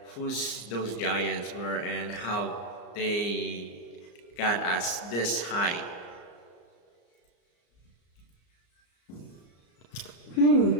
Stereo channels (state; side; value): late; right; 34 ms